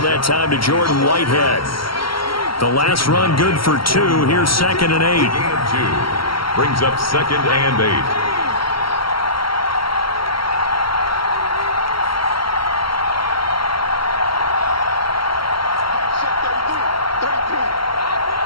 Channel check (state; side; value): late; right; 0.74 ms